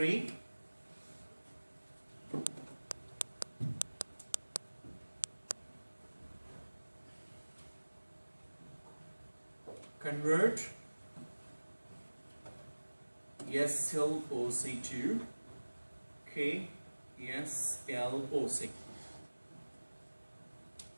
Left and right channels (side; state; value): both; inverted; correlation -1.00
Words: Convert SLOC to KSLOC.